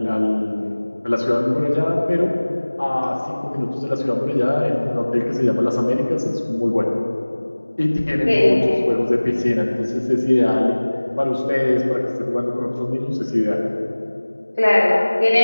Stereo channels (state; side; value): inverted; both; correlation -1.00